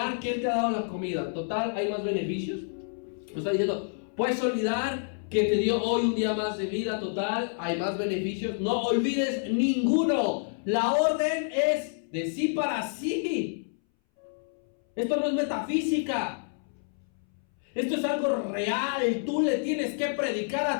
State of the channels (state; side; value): silent; right; 59 dB below the other